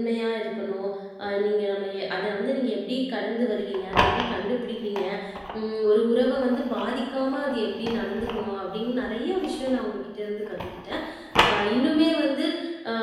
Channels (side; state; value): both; identical; correlation 1.00